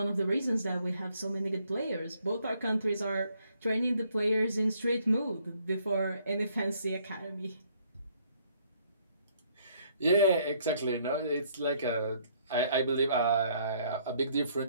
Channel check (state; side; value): inverted; both; correlation -0.66